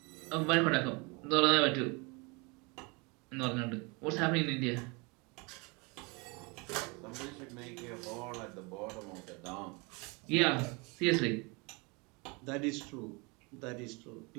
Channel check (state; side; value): quieter; left; 29.0 dB